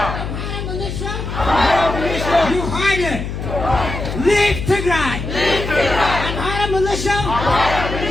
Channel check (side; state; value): left; noise; hum, 5 dB below the sound